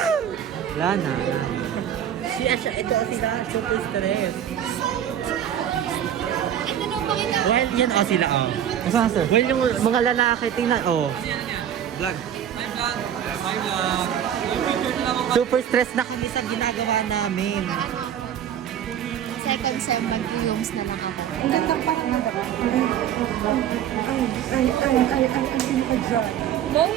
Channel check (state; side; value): quieter; left; 9.9 dB